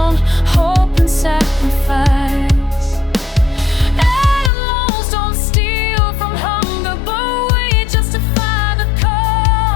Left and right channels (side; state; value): right; drops out; at 4.5 s